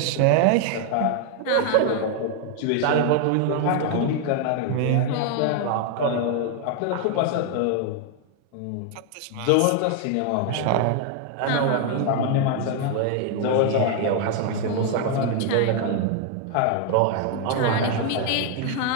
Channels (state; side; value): different; both; correlation 0.00